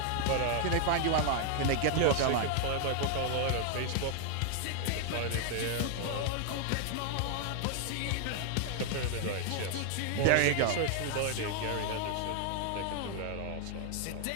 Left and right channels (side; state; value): both; different; correlation 0.00